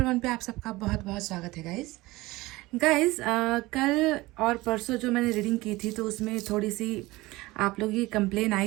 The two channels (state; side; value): quieter; left; 20.1 dB